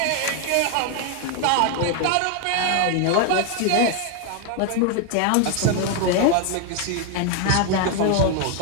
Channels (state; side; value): different; both; correlation 0.00